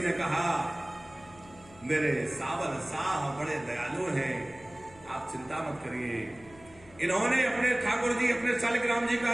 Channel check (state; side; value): noise; left; hum, 23 dB below the sound